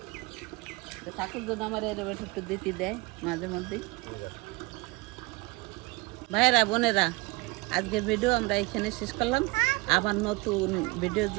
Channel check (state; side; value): quieter; left; 24.0 dB